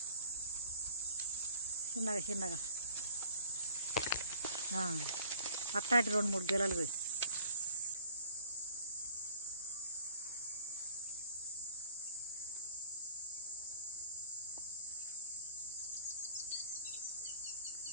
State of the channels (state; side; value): inverted; both; correlation -0.52